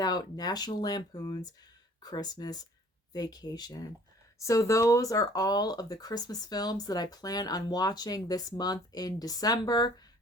National Lampoon's Christmas Vacation. So those are all of the Christmas films that I plan on watching this month in December.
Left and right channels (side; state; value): both; normal; correlation 0.54